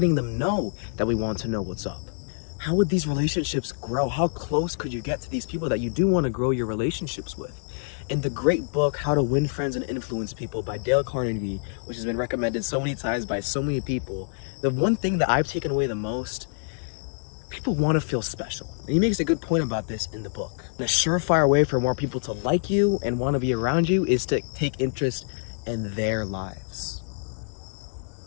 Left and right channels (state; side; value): silent; right; 61 dB below the other